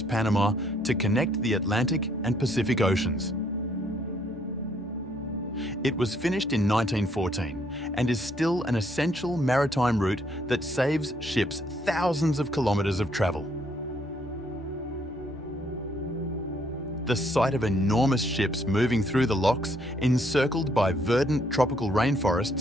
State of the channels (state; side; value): normal; both; correlation 0.69